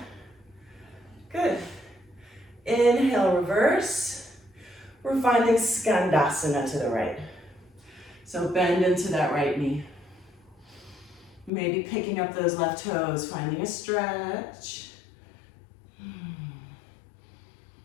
Good. Inhale, reverse. We're finding Skandasana to the right. So bend into that right knee. Maybe picking up those left toes, finding a stretch.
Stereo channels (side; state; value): right; drops out; at 11.5 s